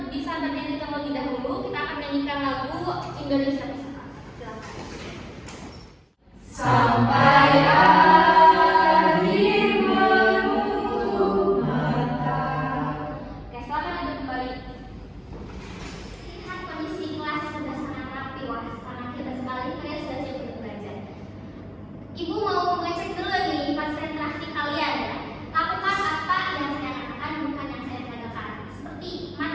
bisa berdiri terlebih dahulu. Kita akan menyanyikan lagu Indonesia Bersatu. Silakan. Sampai akhir menutup mata. Oke, selamat duduk kembali. Lihat kondisi kelas sudah sangat rapi, wah sangat hebat sekali. Kalian sudah siap untuk belajar. Ibu mau ngecek dulu nih konsentrasi kalian ya. Lakukan apa yang saya katakan, bukan yang saya katakan. Seperti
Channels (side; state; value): both; identical; correlation 1.00